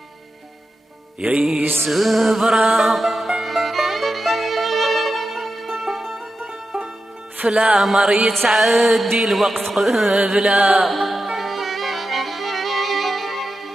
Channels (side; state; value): both; normal; correlation 0.90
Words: يا سبرة فلا مر يتعدي الوقت